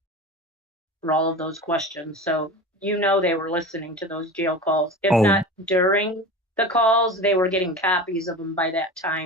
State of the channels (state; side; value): normal; both; correlation 0.31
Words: for all of those questions. So they were listening to those jail calls. If not during the calls, they were getting copies of them by that